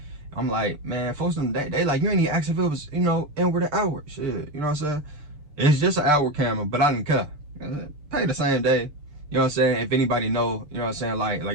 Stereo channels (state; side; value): late; left; 6.8 ms